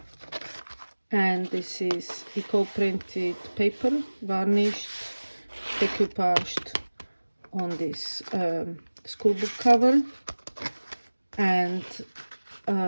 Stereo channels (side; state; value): both; inverted; correlation -1.00